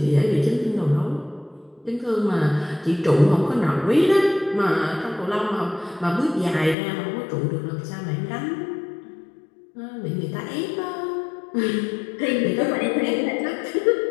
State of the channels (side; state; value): right; drops out; at 6.8 s